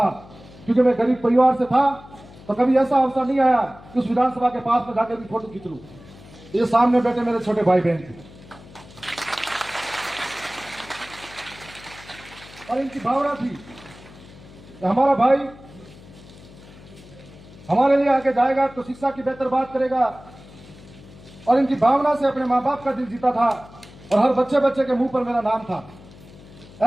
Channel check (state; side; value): noise; left; hum, 20 dB below the sound